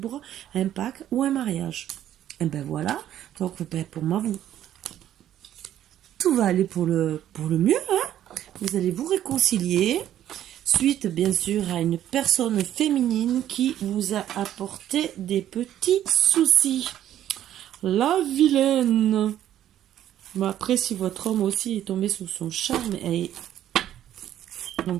un pacte ou un mariage. Et voilà, donc pour moi, tout va aller pour le mieux. Vous allez vous réconcilier, suite bien sûr à une personne féminine qui vous a apporté des petits soucis. La vilaine. Après, si votre homme aussi est tombé sous son charme, elle est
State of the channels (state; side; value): quieter; left; 11.6 dB